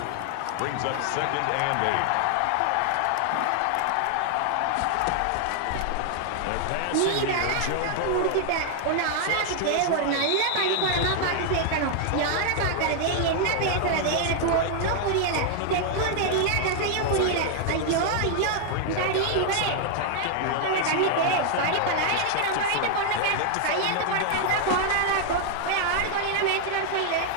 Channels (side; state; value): both; different; correlation 0.00